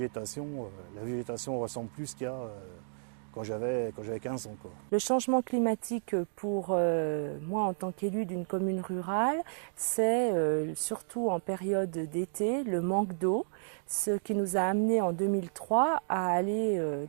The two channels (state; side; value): silent; left; digital silence